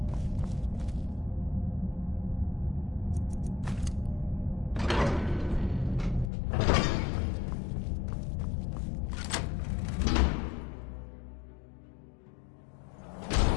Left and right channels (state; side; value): drops out; right; at 6.3 s